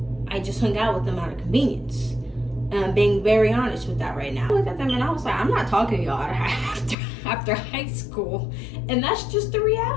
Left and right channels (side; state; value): right; drops out; at 7.0 s